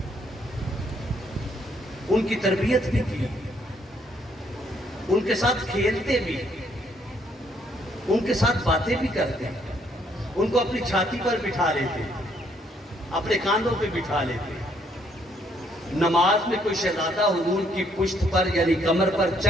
ان کی تربیت بھی کی, ان کے ساتھ کھیلتے بھی, ان کے ساتھ باتیں بھی کرتے, ان کو اپنی چھاتی پر بٹھا لیتے, اپنے کاندھوں پہ بٹھا لیتے. نماز میں کوئی شہزادہ حضور کی پشت پر یعنی کمر پر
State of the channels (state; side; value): normal; both; correlation 0.69